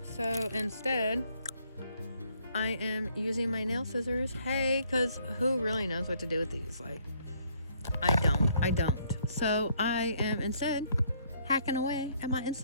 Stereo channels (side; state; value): both; inverted; correlation -0.66